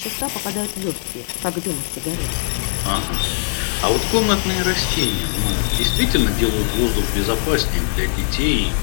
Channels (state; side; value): silent; right; 66 dB below the other